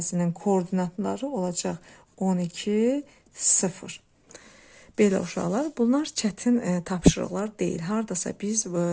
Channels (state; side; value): identical; both; correlation 1.00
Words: koordinatları olacaq 12, 0. Belə uşaqlar, bunlar çətin tapşırıqlar deyil. Hardasa biz